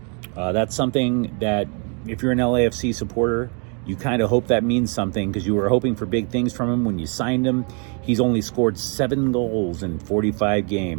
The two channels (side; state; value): left; quieter; 37.2 dB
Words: That's something that, if you're an LAFC supporter, you kind of hope that means something because you were hoping for big things from him when you signed him. He's only scored 7 goals in 45